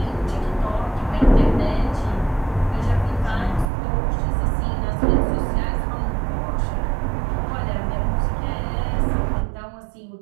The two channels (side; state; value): left; drops out; at 3.7 s